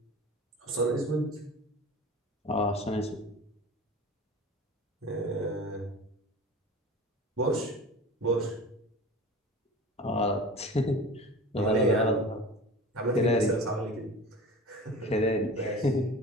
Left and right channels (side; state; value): both; normal; correlation 0.37